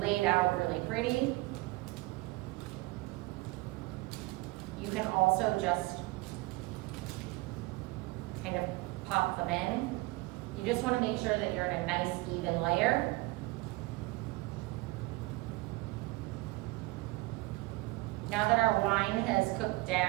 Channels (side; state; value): left; quieter; 22.4 dB